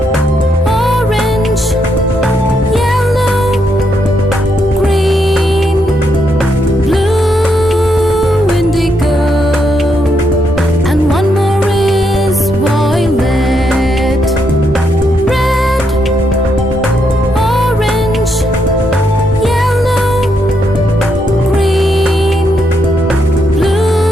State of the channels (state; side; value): normal; both; correlation 0.78